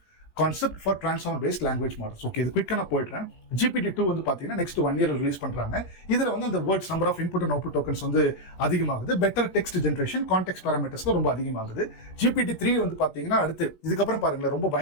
concept for transformer based language models. Okay, இது குயிக்கா நான் போயிடுறேன். GPT 2 வந்து பாத்தீங்கன்னா நெக்ஸ்ட் 1 year ரிலீஸ் பண்றாங்க. இதுல வந்து அந்த words number of input and output tokens வந்து அதிகமாகுது. Better text generation, context parameters ரொம்ப அதிகமாகுது. GPT 3 வந்து பாத்தீங்கன்னா அடுத்து இதுக்கப்புறம் பாருங்களேன் ரொம்ப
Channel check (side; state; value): right; late; 17 ms